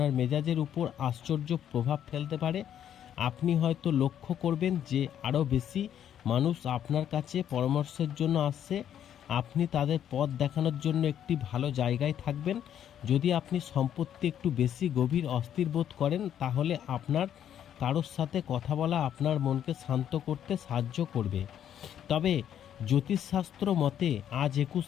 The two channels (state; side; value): quieter; right; 9.9 dB